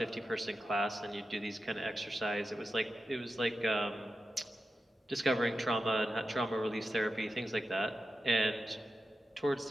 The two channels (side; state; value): both; normal; correlation 0.91